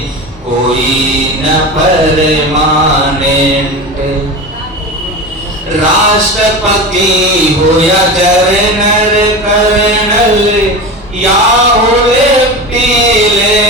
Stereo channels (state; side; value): normal; both; correlation 0.27